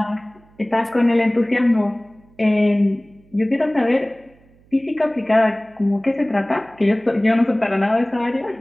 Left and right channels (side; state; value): right; noise; hum, 30 dB below the sound